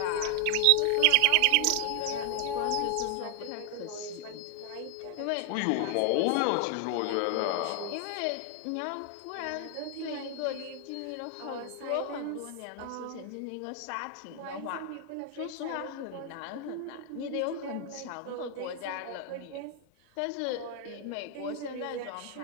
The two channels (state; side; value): different; both; correlation 0.00